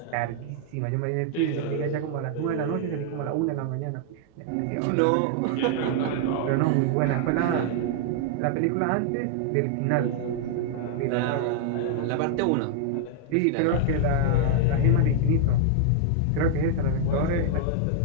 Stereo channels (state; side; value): different; both; correlation -0.01